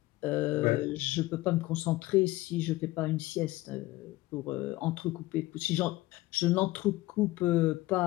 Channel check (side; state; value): right; quieter; 18.4 dB